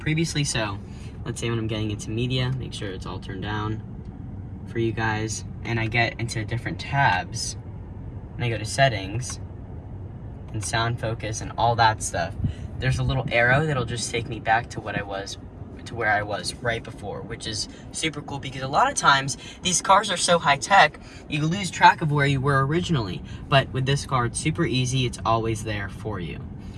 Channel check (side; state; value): both; identical; correlation 1.00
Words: so let's say when I'm getting into media, make sure it's all turned down for you guys, and I get into different tabs, and I go to settings, and sound focus, and all that stuff. There's a little arrow that'll just take me back to where I was right before, which is super cool because a lot of times these cars are so high tech, you lose track of where you were originally. But with this car, it's super easy, it's always there for you.